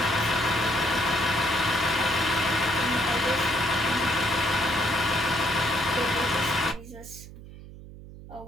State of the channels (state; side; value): noise; right; hum, 16 dB below the sound